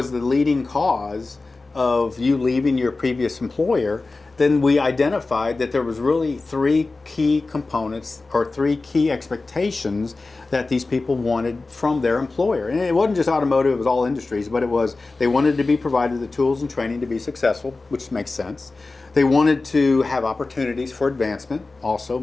the leading cause of you leaving your previous employer, then we identified that there was really three key components or three key expectations that these people wanted from their employer. And it wasn't just automotive, it was all industries, but it was they wanted to be provided the tools and training to be successful, which makes sense. They wanted to have opportunities for advancement, also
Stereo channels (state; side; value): quieter; right; 3.5 dB